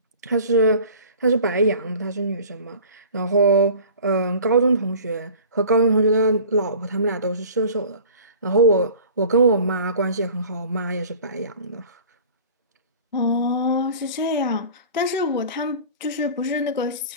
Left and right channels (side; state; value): both; inverted; correlation -0.43